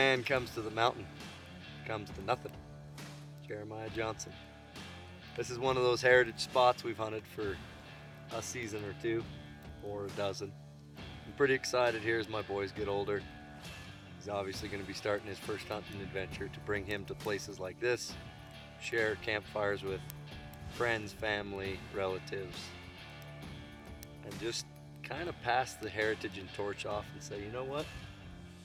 comes to the mountain, comes to nothing. Jeremiah Johnson. This is one of those heritage spots we've hunted for a season or two, or a dozen. I'm pretty excited here as my boys get older. He's obviously going to be starting his first hunting adventure to bring him to places like this, share campfires with friends, family, relatives, and just kind of pass the heritage and torch off and say, you know what?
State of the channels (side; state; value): both; identical; correlation 1.00